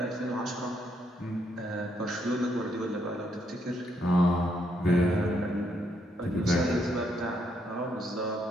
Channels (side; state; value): both; normal; correlation 0.75